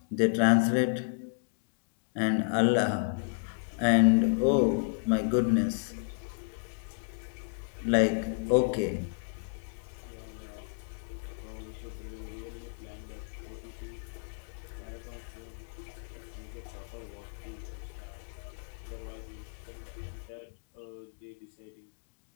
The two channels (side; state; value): right; silent; digital silence